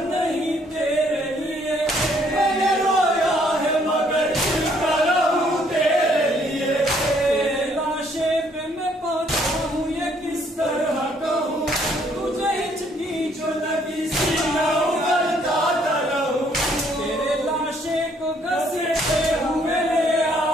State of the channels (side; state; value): both; normal; correlation 0.66